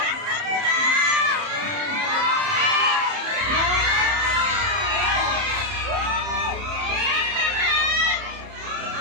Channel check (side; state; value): left; late; 30 ms